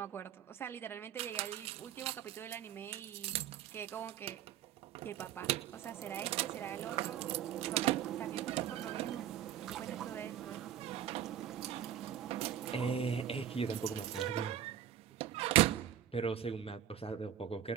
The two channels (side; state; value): left; quieter; 10.2 dB